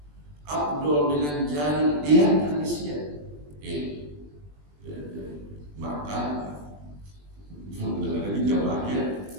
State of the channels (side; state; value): left; late; 20 ms